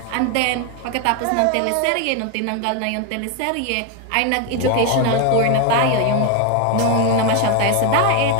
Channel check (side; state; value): both; different; correlation 0.02